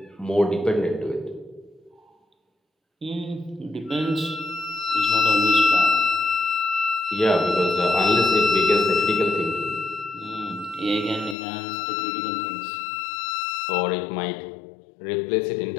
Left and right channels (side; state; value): right; drops out; at 11.4 s